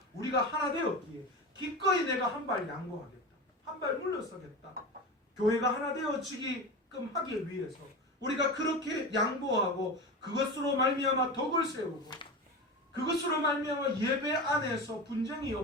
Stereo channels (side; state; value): both; normal; correlation 0.26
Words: 우리가 하나 되었기에 기꺼이 내가 한 발 양보하겠다, 한 발 물러서겠다. 교회가 하나 되어지게끔 하기 위해서 우리가 그렇게 양보하고 그것으로 말미암아 덕을 세우고 그것으로 말미암아 예배 안에서 분쟁이